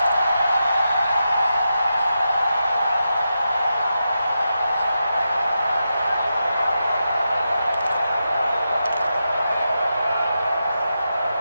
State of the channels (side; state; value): both; inverted; correlation -0.88